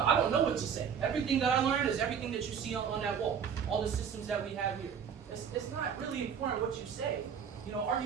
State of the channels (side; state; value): left; quieter; 7.5 dB